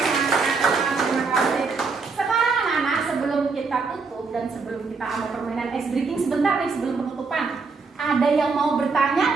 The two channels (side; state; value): left; quieter; 4.5 dB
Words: Terima kasih. Sekarang anak-anak, sebelum kita tutup dan sebelum kita ada permainan ice breaking sebentar nih sebelum penutupan, ada yang mau bertanya